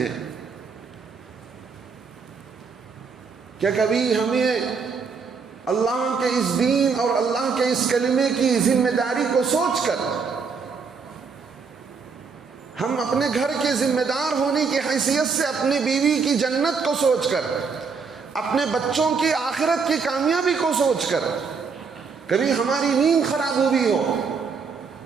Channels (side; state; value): left; quieter; 5.3 dB